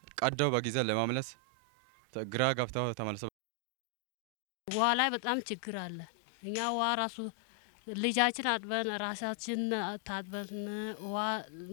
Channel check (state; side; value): drops out; right; at 3.3 s